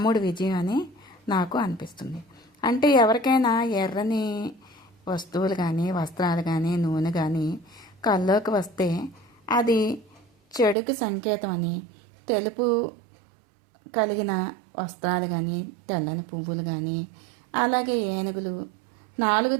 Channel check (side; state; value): left; drops out; at 10.8 s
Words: విజయం అని నాకు అనిపిస్తుంది. అంటే ఎవరికైనా ఎర్రని వస్తువులు కానీ వస్త్రాలు కానీ నూనె కానీ కల్లోకి వస్తే అది చెడుకు సంకేతం అని, తెలుపు కలిగిన వస్త్రాలు కానీ తెల్లని పువ్వులు కానీ అలాగే ఏనుగులు 4